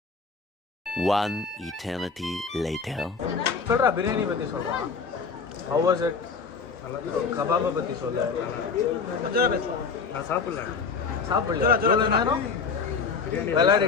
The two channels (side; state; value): right; quieter; 5.2 dB